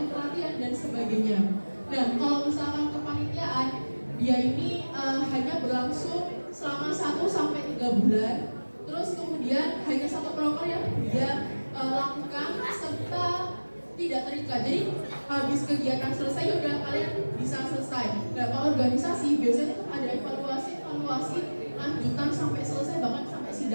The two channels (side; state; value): both; inverted; correlation -1.00